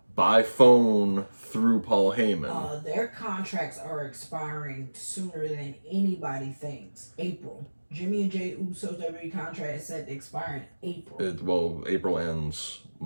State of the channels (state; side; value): inverted; both; correlation -1.00